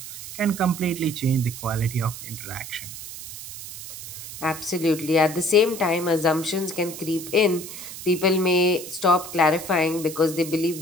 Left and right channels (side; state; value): right; noise; hiss, 11 dB below the sound